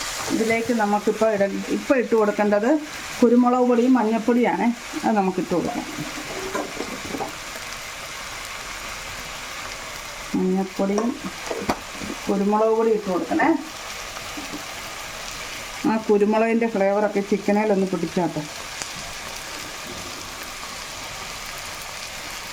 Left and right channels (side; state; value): both; identical; correlation 1.00